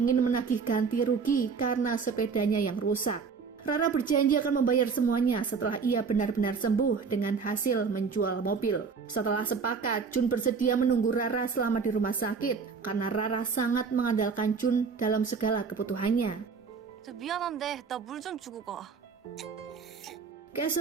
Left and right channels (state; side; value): quieter; left; 5.4 dB